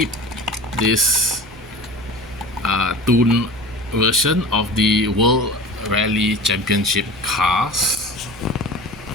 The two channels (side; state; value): right; noise; hum, 23 dB below the sound